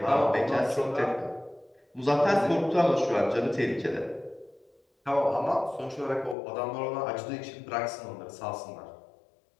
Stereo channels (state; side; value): drops out; right; at 6.4 s